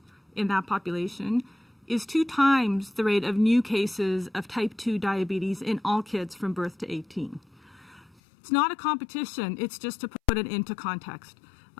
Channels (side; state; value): right; drops out; at 8.2 s